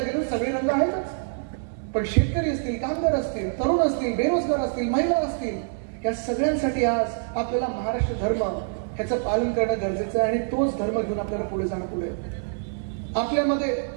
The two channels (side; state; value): left; silent; 61 dB below the other